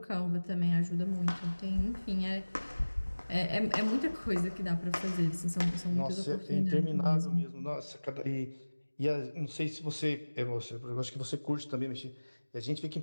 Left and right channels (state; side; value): inverted; both; correlation -1.00